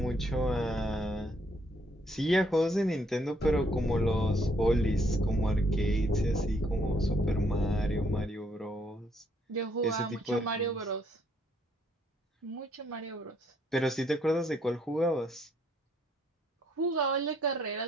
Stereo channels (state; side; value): normal; both; correlation 0.69